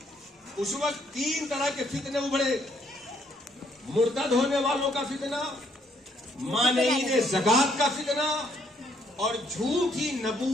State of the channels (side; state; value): both; normal; correlation 0.69